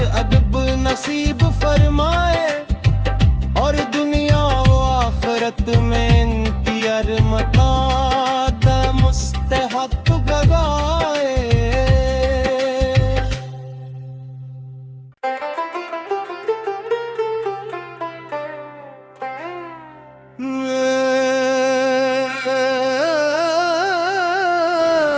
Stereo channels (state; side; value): identical; both; correlation 1.00